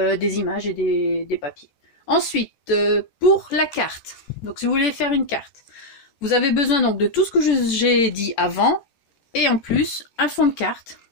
images et des papiers. Ensuite, pour la carte. Donc si vous voulez faire une carte, vous avez besoin donc de tout ce que j'ai dit avant. Et en plus, un fond de carte.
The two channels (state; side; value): late; right; 14 ms